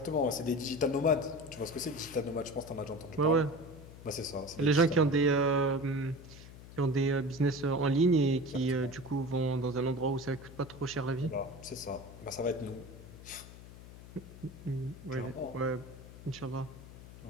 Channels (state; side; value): noise; left; hum, 16 dB below the sound